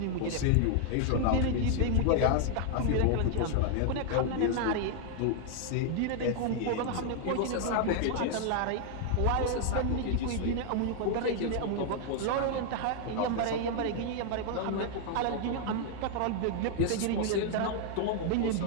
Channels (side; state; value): both; different; correlation 0.00